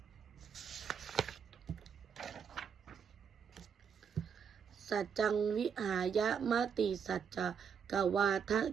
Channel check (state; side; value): quieter; left; 7.0 dB